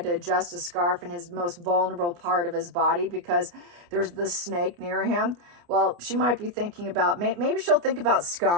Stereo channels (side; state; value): left; late; 29 ms